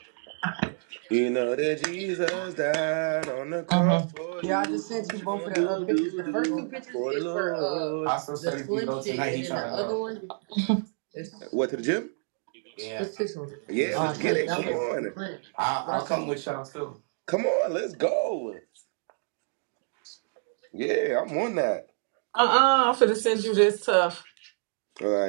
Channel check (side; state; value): left; silent; 59 dB below the other